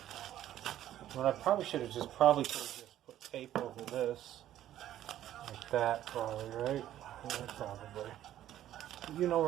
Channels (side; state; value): left; quieter; 12.4 dB